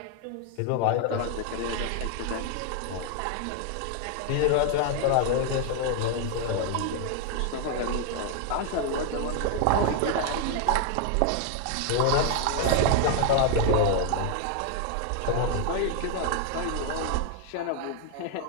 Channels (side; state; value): both; different; correlation 0.00